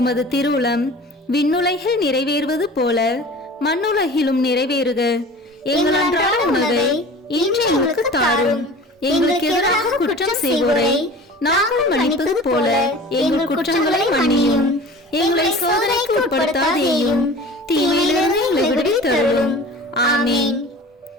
திருவுளம் விண்ணுலகில் நிறைவேறுவது போல மண்ணுலகிலும் நிறைவேறுக. எங்கள் அன்றாட உணவை இன்று எங்களுக்கு தாரும். எங்களுக்கு எதிராக குற்றம் செய்வோரை நாங்கள் மன்னிப்பது போல எங்கள் குற்றங்களை மன்னியும். எங்களை சோதனைக்கு உட்படுத்தாதேயும், தீமையிலிருந்து எங்களை விடுவித்தருளும். ஆமீன்.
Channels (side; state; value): both; normal; correlation 0.40